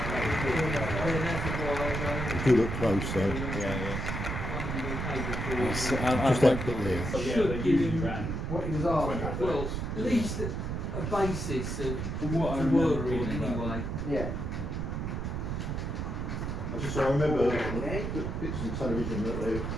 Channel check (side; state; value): right; noise; rumble, 3 dB below the sound